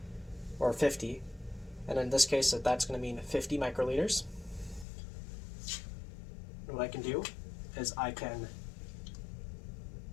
or 50. And in this case, that's going to mean 50 microliters. And what I can do is I can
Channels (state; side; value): drops out; right; at 4.9 s